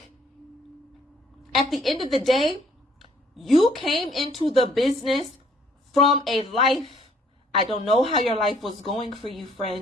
at the end of the day, you came into the business from a life. I don't know how your life was going for you,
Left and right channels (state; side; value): normal; both; correlation 0.62